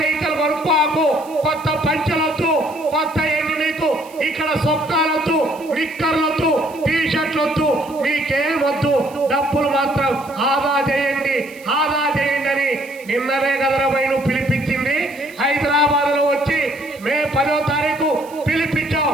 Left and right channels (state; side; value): noise; right; hiss, 23 dB below the sound